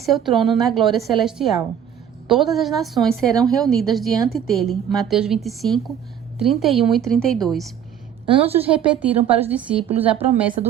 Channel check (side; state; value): left; quieter; 9.0 dB